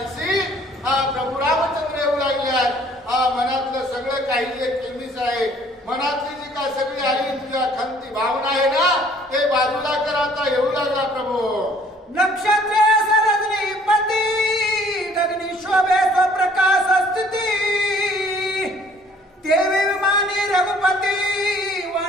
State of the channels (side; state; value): both; normal; correlation 0.57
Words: आणि प्रभू रामचंद्र येऊ लागल्यात. मनातलं सगळं काही जे केमीस आहे, मनातली जी काय सगळी आली तुझ्या खंती भावना आहे ना, ते बाजूला कर. आता येऊ लागला प्रभू. नक्षत्रे सरजनी पती गगनी शोभे स्वप्रकाश स्थिती देवी विमानी रघुपती